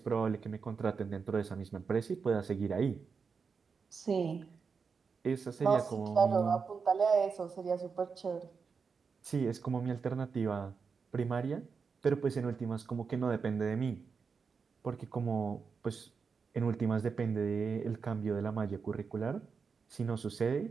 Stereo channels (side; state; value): left; quieter; 5.5 dB